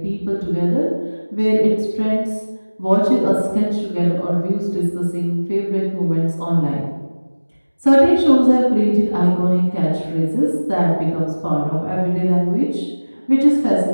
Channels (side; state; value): both; inverted; correlation -1.00